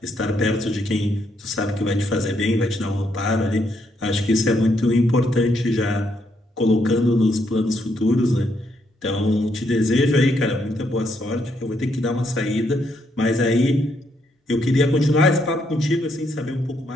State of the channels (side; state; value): both; normal; correlation 0.75